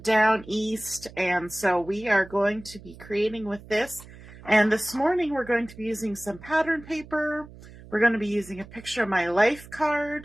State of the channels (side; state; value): right; noise; hum, 19 dB below the sound